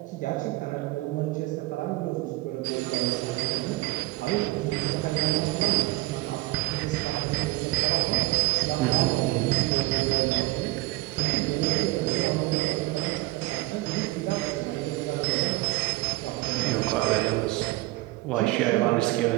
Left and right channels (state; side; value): quieter; left; 20.1 dB